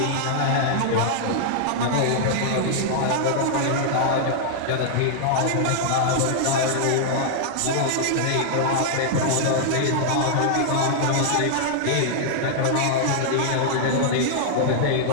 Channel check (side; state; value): both; different; correlation -0.01